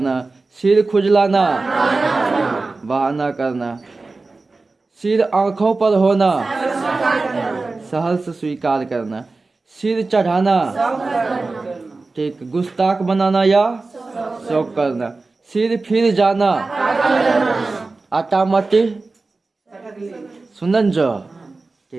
सिर खुजलाना, बहाना करना, सिर आंखों पर होना, सहर्ष स्वीकार करना, सिर चढ़ाना, ठीक, गुस्ताख बनाना या शौक करना, सिर फिर जाना, आटा मट्टी सुनन जो,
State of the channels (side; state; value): left; quieter; 3.6 dB